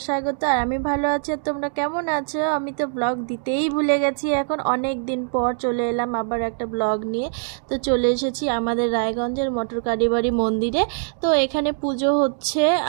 স্বাগত। আর আমি ভালো আছি, আর তোমরা কেমন আছো? আমি তো ব্লগ দিতেই ভুলে গেছি। এখন অনেক দিন পর চলে এলাম আবার একটা ব্লগ নিয়ে। তো চলে এসেছি আমাদের রায়গঞ্জের মটর কালীবাড়ি মন্দিরে। তো এখানে পুজো হচ্ছে,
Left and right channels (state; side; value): silent; left; digital silence